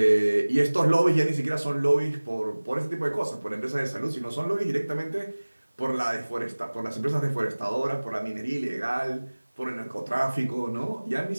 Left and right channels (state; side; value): inverted; both; correlation -1.00